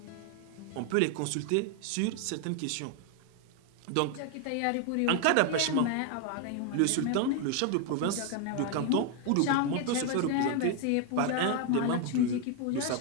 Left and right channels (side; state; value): both; different; correlation 0.01